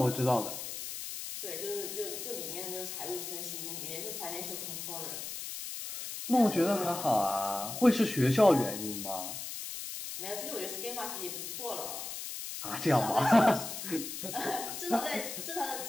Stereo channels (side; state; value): left; noise; hiss, 7 dB below the sound